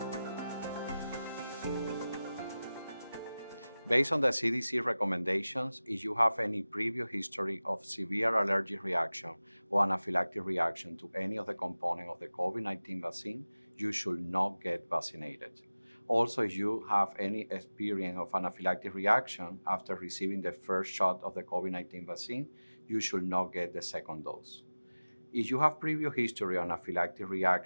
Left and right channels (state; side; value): inverted; both; correlation -0.97